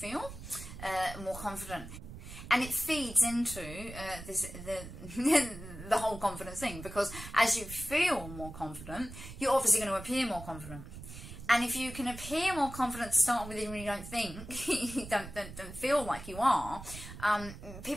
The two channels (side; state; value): right; noise; rumble, 12 dB below the sound